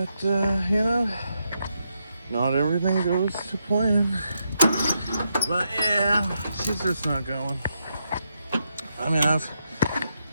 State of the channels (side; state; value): both; inverted; correlation -0.82